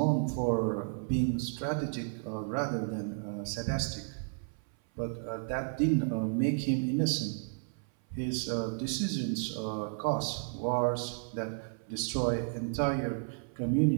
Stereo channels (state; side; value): silent; left; 56 dB below the other